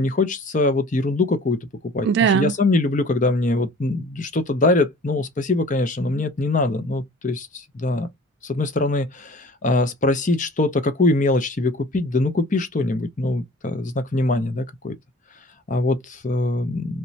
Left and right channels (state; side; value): normal; both; correlation 0.47